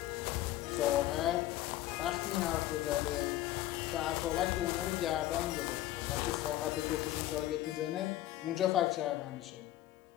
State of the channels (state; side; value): quieter; right; 14.7 dB